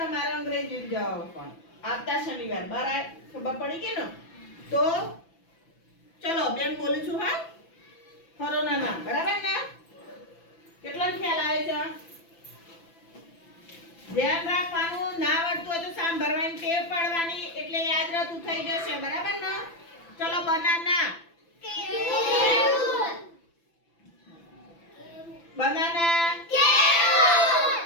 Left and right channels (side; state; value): right; late; 6.0 ms